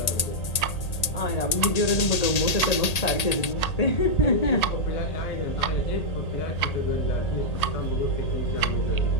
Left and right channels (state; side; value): late; right; 1.8 ms